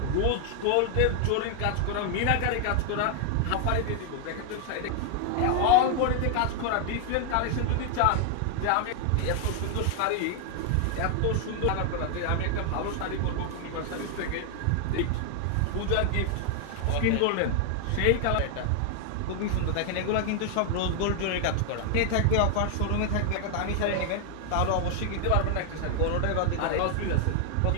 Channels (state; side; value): different; both; correlation 0.00